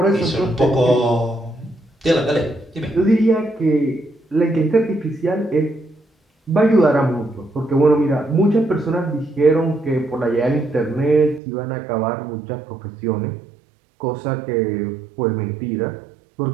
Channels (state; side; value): drops out; left; at 11.4 s